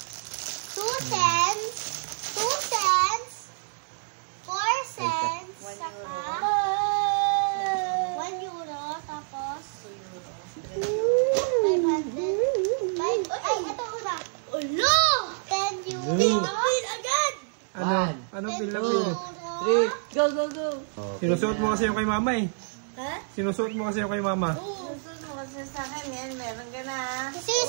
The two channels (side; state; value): left; silent; 60 dB below the other